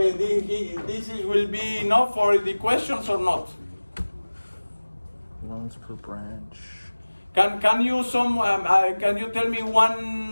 this will be enough for the questions or not? Loans per branch. Can you tell me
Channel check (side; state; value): both; inverted; correlation -1.00